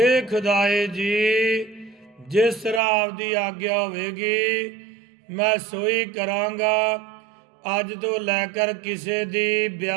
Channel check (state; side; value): drops out; left; at 2.8 s